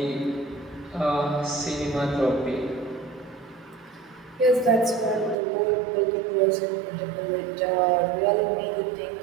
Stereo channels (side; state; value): left; drops out; at 5.4 s